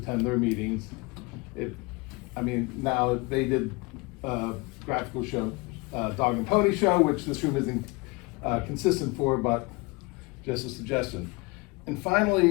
their meetings. Now they did graphical show, dog and pony show, which this room isn't consistent for, but just a suggestion. And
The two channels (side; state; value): right; quieter; 26.1 dB